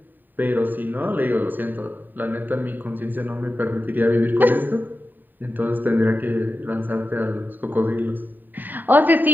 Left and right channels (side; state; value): left; late; 0.090 ms